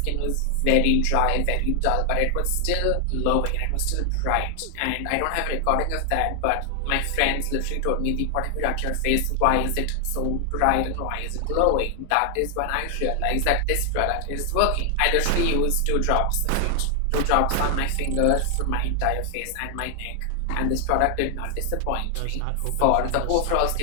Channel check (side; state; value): both; different; correlation 0.00